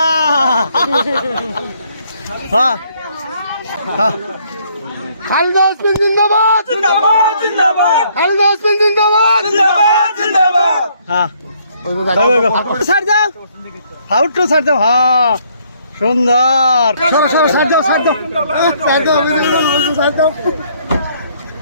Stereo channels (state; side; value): inverted; both; correlation -0.66